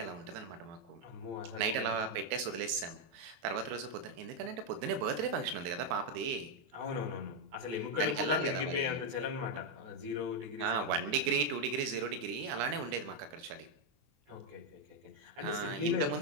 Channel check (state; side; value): late; left; 23 ms